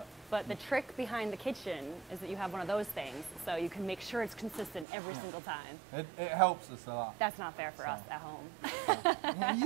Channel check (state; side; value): drops out; left; at 4.9 s